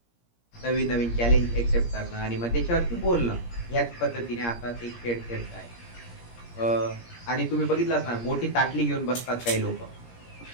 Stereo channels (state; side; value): late; right; 17 ms